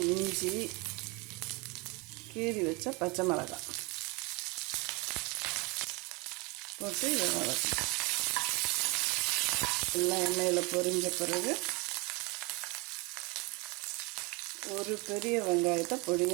இஞ்சி, கீறி வச்ச பச்சை மிளகாய் போட்டு இதை வதக்கணும். எல்லாம் எண்ணெயில் பொரிஞ்ச பிறகு ஒரு பெரிய வெங்காயத்தை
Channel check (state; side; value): quieter; left; 27.9 dB